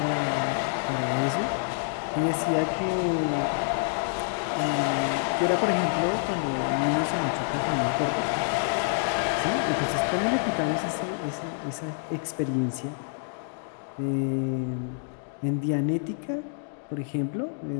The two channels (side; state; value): right; silent; digital silence